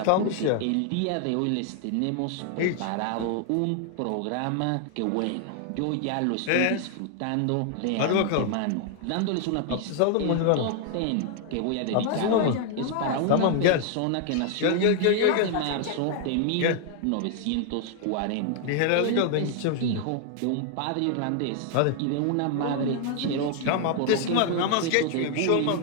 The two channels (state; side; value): different; both; correlation 0.00